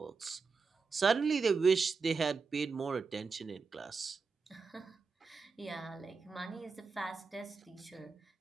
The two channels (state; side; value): quieter; left; 4.8 dB